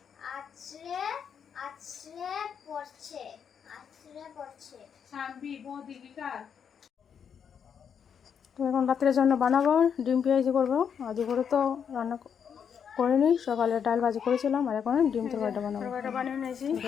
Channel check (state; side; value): quieter; right; 7.5 dB